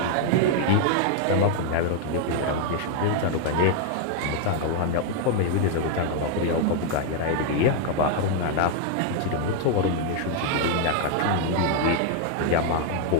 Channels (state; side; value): different; both; correlation 0.00